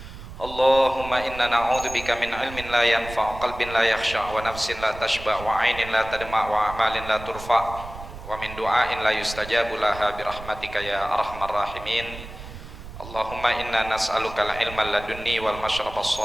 Allahumma inna na'udzubika min ilmin la yanfa', qalbin la yakhsha', wa nafsin la tashba', wa 'ainin la tadma', wa amalin la turfa', wa min du'ain la yustajabu laha bi rahmatika ya arhamar rahimin. Allahumma inna nas'aluka al-ilma ladunni wal mashraba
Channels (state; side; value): noise; right; rumble, 13 dB below the sound